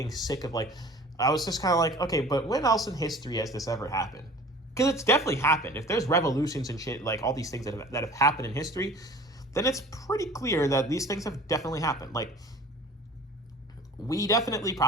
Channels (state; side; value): normal; both; correlation 0.45